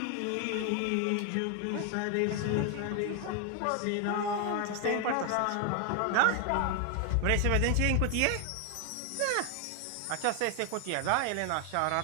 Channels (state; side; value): different; both; correlation 0.01